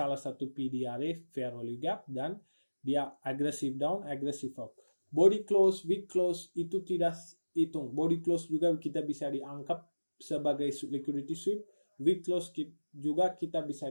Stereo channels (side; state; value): both; inverted; correlation -1.00